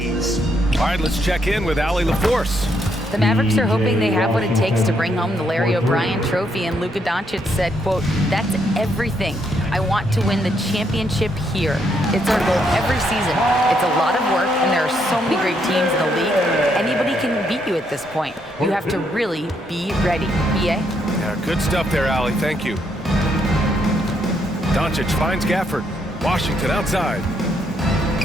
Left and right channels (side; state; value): both; normal; correlation 0.75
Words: All right, let's check in with Allie LaForce. The Mavericks are hoping they have what it takes to bring home the Larry O'Brien trophy, and Luka Doncic said, quote, "That's everything. I want to win the championship here. It's our goal every season. It's a lot of work, and there are so many great teams in the league. Anybody can beat you at this point. You have to really be ready." BA? Yeah, good stuff there, Allie. Thank you. Doncic finds Gafford. Washington outside.